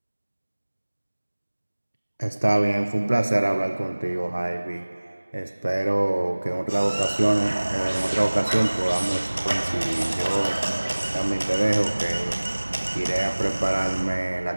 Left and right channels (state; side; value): inverted; both; correlation -1.00